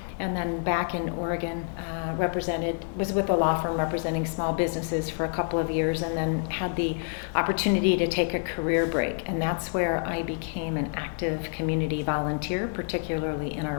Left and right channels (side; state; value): right; silent; 58 dB below the other